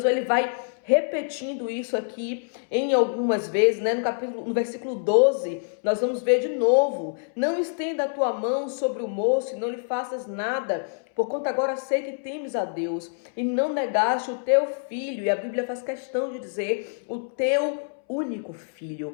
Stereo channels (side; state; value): right; silent; 61 dB below the other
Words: ele vai repetindo isso aqui em algumas vezes, né? No versículo 12, nós vamos ver de novo: não estenda a tua mão sobre o moço e não lhe faças nada, porquanto agora sei que temes a Deus e não negaste o teu filho. E a Bíblia faz questão de dizer o teu único